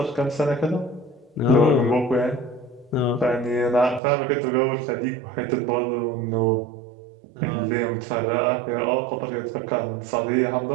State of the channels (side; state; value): left; drops out; at 4.0 s